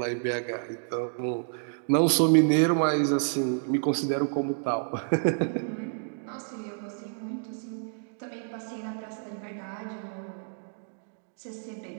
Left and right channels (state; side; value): silent; left; digital silence